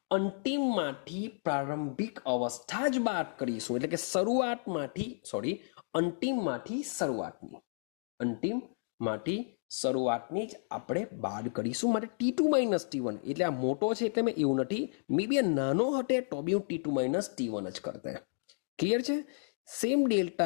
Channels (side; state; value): right; silent; digital silence